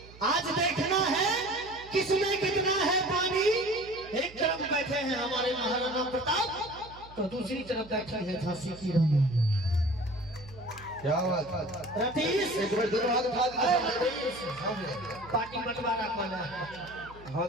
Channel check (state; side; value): noise; right; hum, 20 dB below the sound